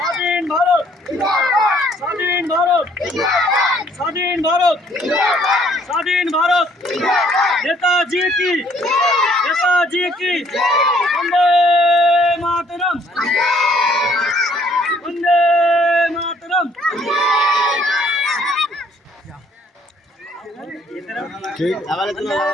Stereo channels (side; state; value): both; normal; correlation 0.62